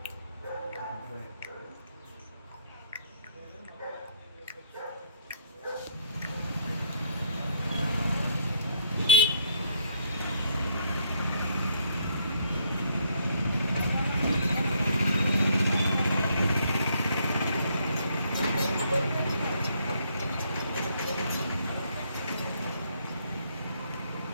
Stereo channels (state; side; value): inverted; both; correlation -0.67